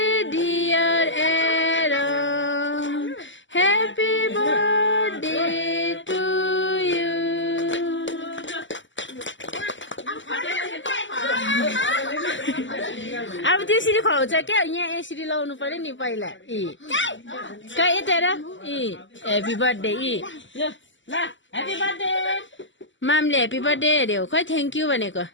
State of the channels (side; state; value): right; late; 0.54 ms